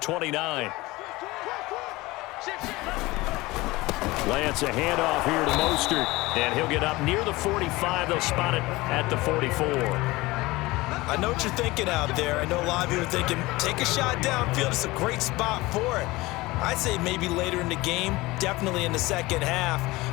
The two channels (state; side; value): quieter; right; 20.7 dB